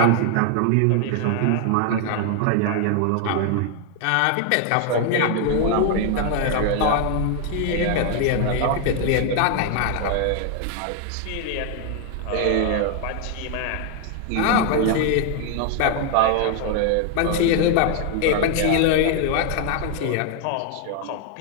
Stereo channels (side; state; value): both; different; correlation 0.00